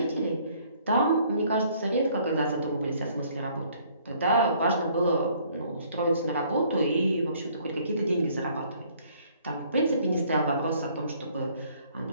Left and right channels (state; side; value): inverted; both; correlation -0.61